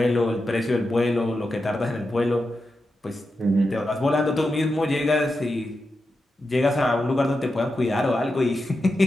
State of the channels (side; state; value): both; normal; correlation 0.89